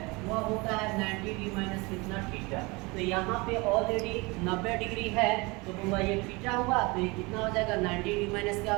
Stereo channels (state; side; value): quieter; left; 25.6 dB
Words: वह होता है 90 डिग्री माइनस कितना, थीटा। तो यहाँ पे ऑलरेडी 90 डिग्री है, तो हुआ ये थीटा हुआ, तो ये कितना हो जाएगा, 90 डिग्री माइनस क्या